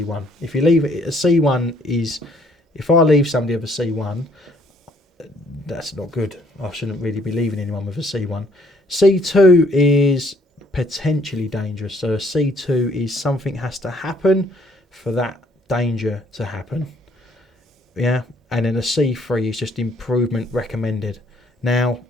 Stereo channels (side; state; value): both; normal; correlation 0.64